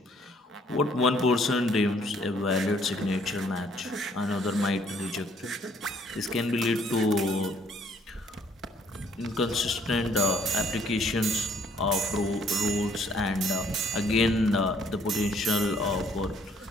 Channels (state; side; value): normal; both; correlation 0.63